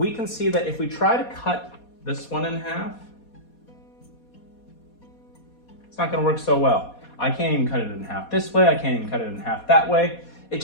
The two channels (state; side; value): late; right; 4.2 ms